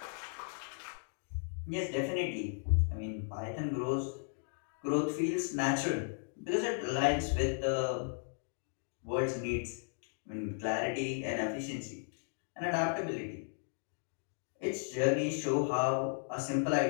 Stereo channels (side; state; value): right; silent; digital silence